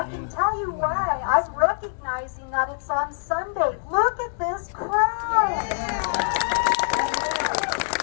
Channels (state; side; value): silent; right; digital silence